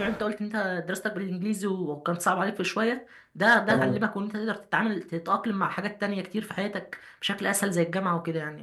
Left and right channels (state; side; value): identical; both; correlation 1.00